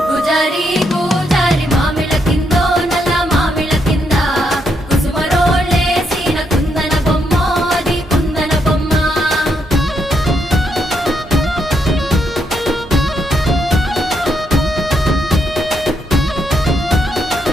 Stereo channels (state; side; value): normal; both; correlation 0.78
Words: గుజారి గుజారి మామిళ్ళ కిందో నల్ల మామిళ్ళ కింద కుసుమరోళ్ళేసిన కుందన బొమ్మ అది కుందన బొమ్మ